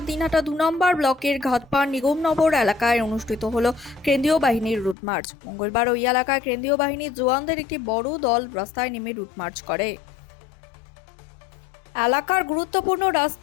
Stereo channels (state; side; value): drops out; right; at 5.0 s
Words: দিনহাটা 2 নম্বর ব্লকের ঘাটপাড় নিগমনগর এলাকায় অনুষ্ঠিত হলো কেন্দ্রীয় বাহিনীর রুট মার্চ। মঙ্গলবার ওই এলাকায় কেন্দ্রীয় বাহিনীর জওয়ানদের একটি বড় দল রাস্তায় নেমে রুট মার্চ করে। এলাকার গুরুত্বপূর্ণ